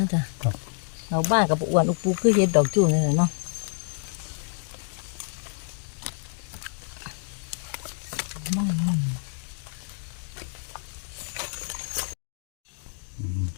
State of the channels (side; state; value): right; silent; digital silence